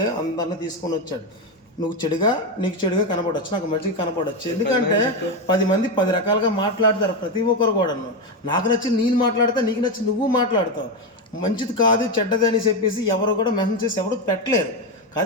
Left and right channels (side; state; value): both; normal; correlation 0.11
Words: అందరిని తీసుకొని వచ్చాడు. నువ్వు చెడుగా, నీకు చెడుగా కనపడవచ్చు, నాకు మంచిగా కనపడవచ్చు. ఎందుకంటే 10 మంది 10 రకాలుగా మాట్లాడతారు ప్రతి ఒక్కరు కూడా. నాకు నచ్చి నేను మాట్లాడతా, నీకు నచ్చి నువ్వు మాట్లాడతావు. మంచిది కాదు చెడ్డది అని చెప్పేసి ఎవరు కూడా మెసేజ్ చేసి ఎవరు పెట్టలేరు.